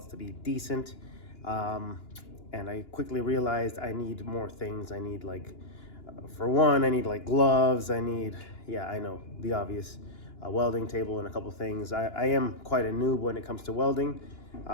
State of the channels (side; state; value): right; late; 2.9 ms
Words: to be decent. And I quickly realized I need more things. I need for one, I need gloves. I need, yeah, I know, the obvious, a welding table and a couple things. I am quite a noob when it comes to welding.